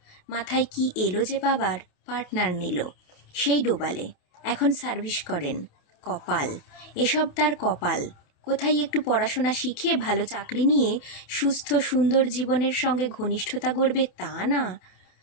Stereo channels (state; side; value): late; right; 27 ms